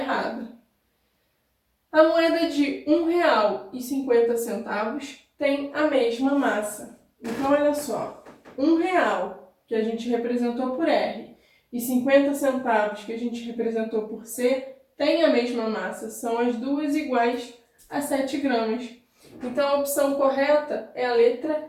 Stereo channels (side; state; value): both; identical; correlation 1.00